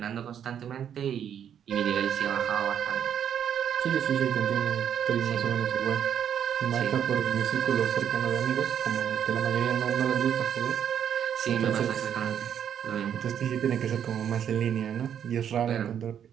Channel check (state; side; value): quieter; left; 9.0 dB